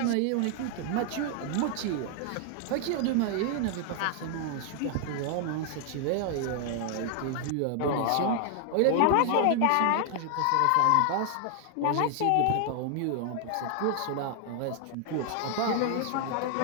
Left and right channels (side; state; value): both; different; correlation 0.00